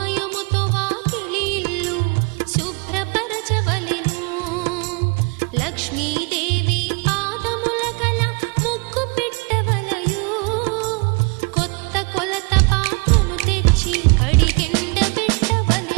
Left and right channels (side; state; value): left; quieter; 31.2 dB